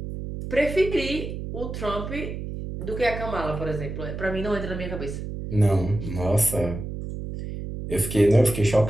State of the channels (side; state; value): right; noise; hum, 7 dB below the sound